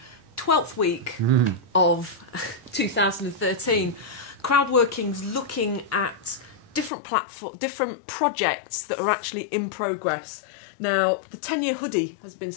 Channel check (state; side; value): drops out; right; at 6.9 s